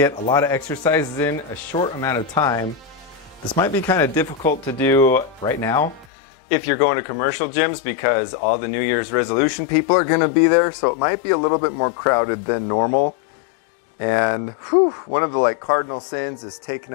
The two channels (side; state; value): right; drops out; at 6.1 s